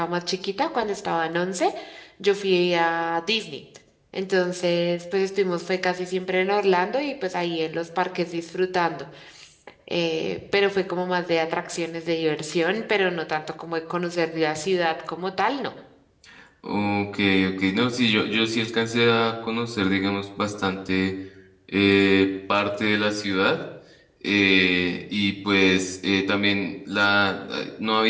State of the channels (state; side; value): identical; both; correlation 1.00